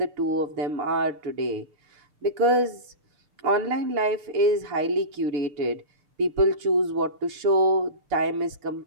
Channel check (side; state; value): left; late; 6.7 ms